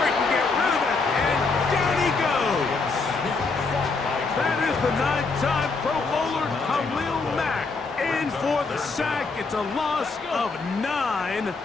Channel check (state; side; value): quieter; right; 4.1 dB